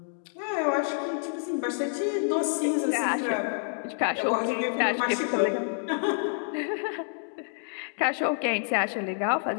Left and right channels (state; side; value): silent; right; digital silence